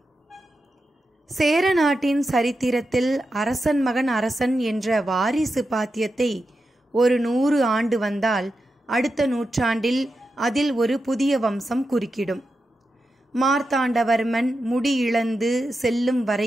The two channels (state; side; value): normal; both; correlation 0.89